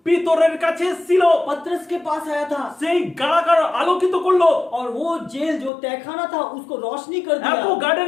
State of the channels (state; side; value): drops out; right; at 5.7 s